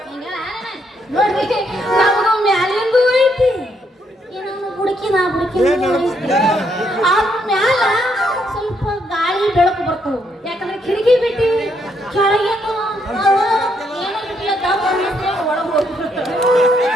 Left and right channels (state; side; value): normal; both; correlation 0.74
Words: ನೋಡ್ರಿ, ನಮಗೂ ಮ್ಯಾಲಿಂದು ಐತಿ, ಏನೋ ಬುಡಕಿನ ಆ ಮ್ಯಾಲ ಸ್ವಲ್ಪ ಗಾಳಿ ಬೆಳಕು ಬರ್ತವು. ಯಾಕಂದ್ರೆ ಕಿಟಕಿ ಬಿಟ್ಟಿ ಕೆಳಗೇನು ಏನೋ ಬಿಟ್ಟಿಲ್ಲ, ದಮ್ ಅನ್ನಿಸ್ತೇವೆ, ಒಳಗೆ ಹೋಗ್ಬಿಡ್ತೇವೆ.